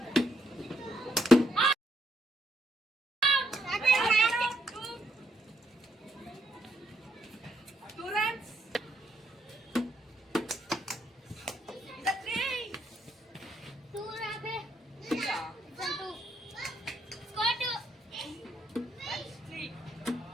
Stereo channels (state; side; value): normal; both; correlation 0.75